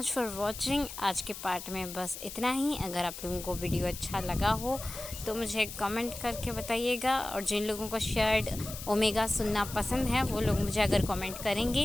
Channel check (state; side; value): noise; left; hiss, 11 dB below the sound